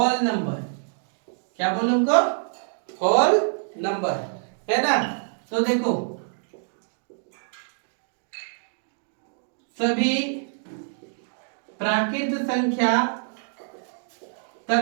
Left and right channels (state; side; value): silent; left; digital silence